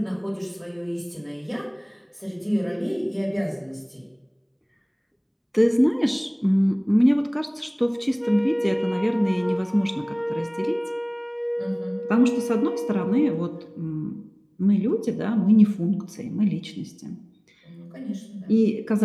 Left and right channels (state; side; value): identical; both; correlation 1.00